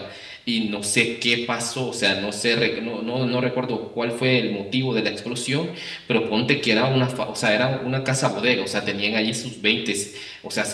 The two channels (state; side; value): identical; both; correlation 1.00